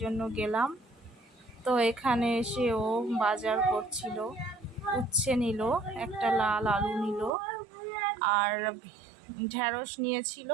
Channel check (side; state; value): left; drops out; at 7.3 s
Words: জন্য গেলাম। তো এখানে এসে ও বাজার করছিল, উচ্ছে নিল, একটা লাল আলু নিল, আর ঢেঁড়স নিয়েছিল,